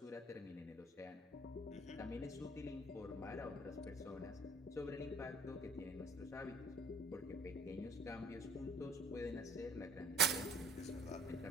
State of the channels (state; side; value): normal; both; correlation 0.54